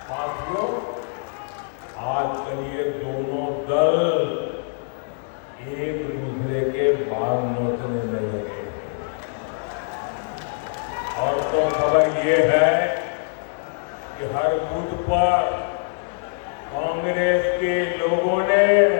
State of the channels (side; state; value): right; silent; 62 dB below the other